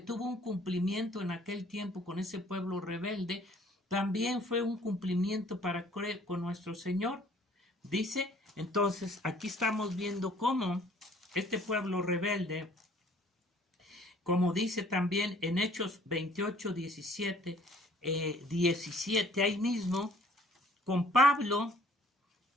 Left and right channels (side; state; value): both; normal; correlation 0.57